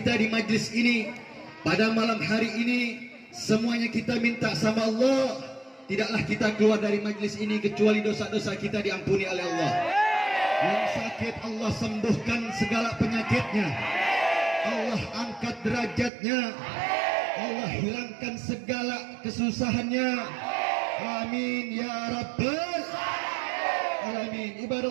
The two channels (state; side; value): drops out; left; at 16.1 s